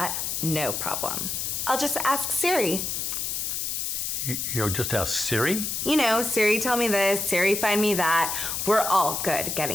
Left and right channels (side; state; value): left; noise; hiss, 2 dB below the sound